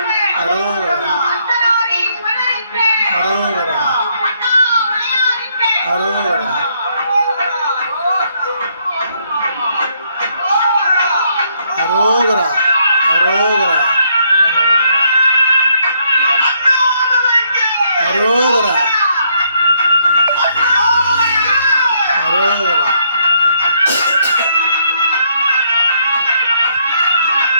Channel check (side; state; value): both; inverted; correlation -0.71